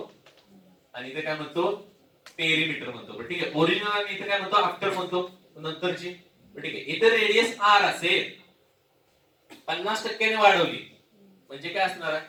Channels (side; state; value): both; identical; correlation 1.00